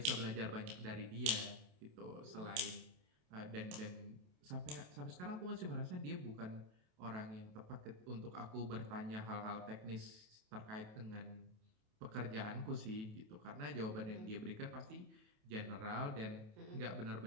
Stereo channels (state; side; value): late; left; 28 ms